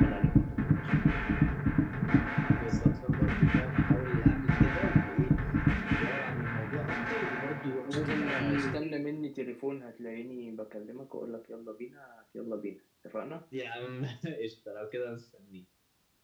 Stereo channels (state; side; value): identical; both; correlation 1.00